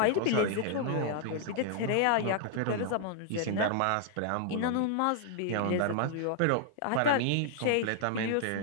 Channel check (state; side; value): different; both; correlation 0.00